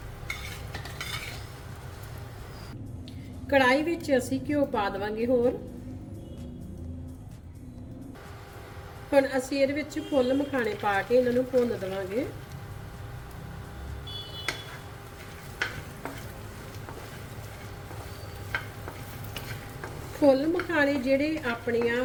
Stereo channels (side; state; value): both; identical; correlation 1.00